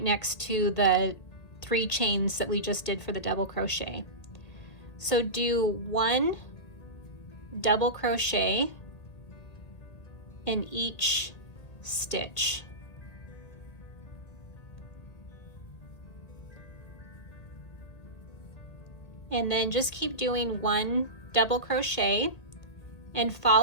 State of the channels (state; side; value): late; right; 1.8 ms